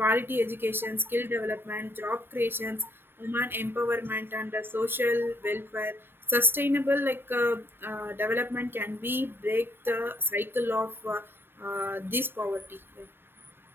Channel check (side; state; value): left; late; 0.10 ms